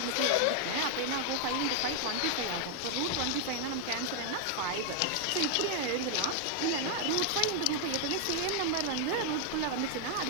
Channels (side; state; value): both; different; correlation 0.00